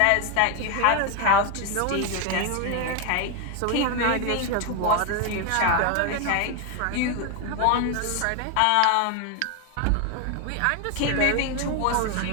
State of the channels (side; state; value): both; different; correlation 0.01